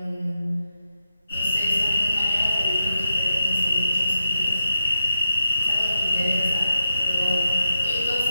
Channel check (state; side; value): inverted; both; correlation -0.86